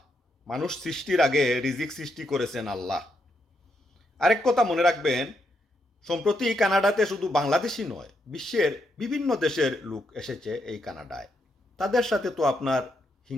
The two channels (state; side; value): normal; both; correlation 0.79